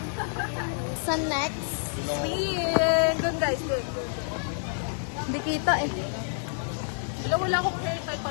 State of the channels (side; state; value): right; silent; digital silence